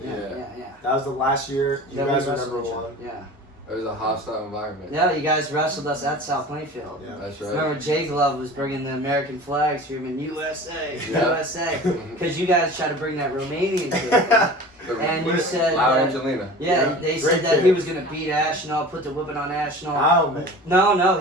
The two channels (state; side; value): normal; both; correlation 0.38